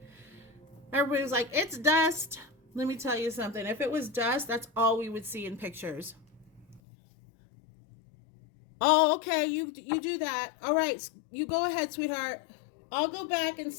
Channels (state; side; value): drops out; right; at 6.8 s